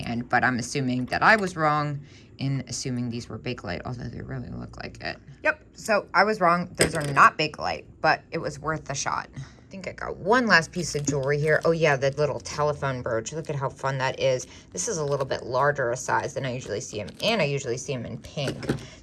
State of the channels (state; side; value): identical; both; correlation 1.00